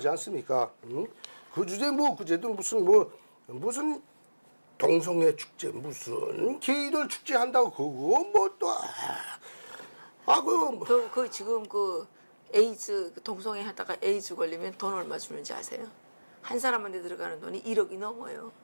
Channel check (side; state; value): both; inverted; correlation -1.00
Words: 않습니까? 그 주제 뭐 그제도 무슨 동성애 축제 무슨 게이들 축제 한다고 그거 뭐 또 그 지금 그 에이즈 동성애 하다가 에이즈 걸리면 돈 얼마 주는지 아세요? 한 사람한테 들어가는 돈이 1억이 넘어요.